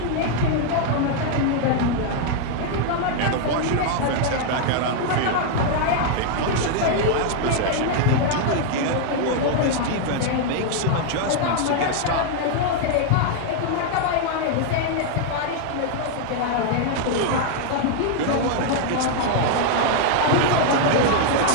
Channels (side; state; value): both; different; correlation 0.00